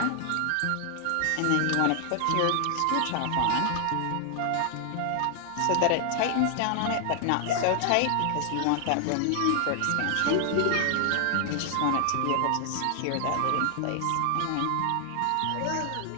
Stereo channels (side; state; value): both; different; correlation 0.00